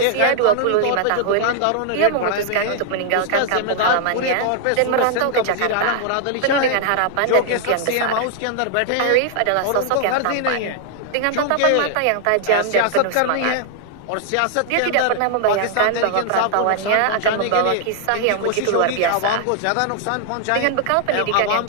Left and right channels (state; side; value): different; both; correlation 0.00